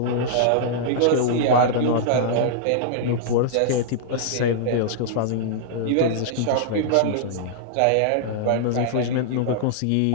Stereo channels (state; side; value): different; both; correlation -0.02